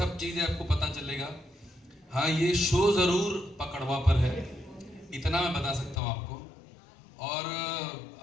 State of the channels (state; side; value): drops out; right; at 6.0 s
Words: चीज़ें आपको पता चलेगा। हाँ, ये शो ज़रूर पकड़वा पर है, इतना मैं बता सकता हूँ आपको। और